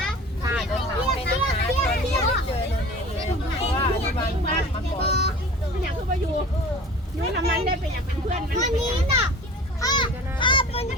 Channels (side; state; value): both; normal; correlation 0.41